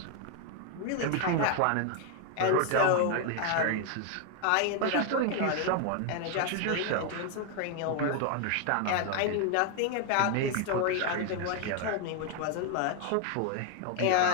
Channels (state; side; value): different; both; correlation 0.01